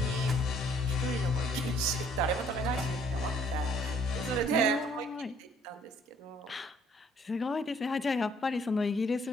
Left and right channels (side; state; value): both; normal; correlation 0.62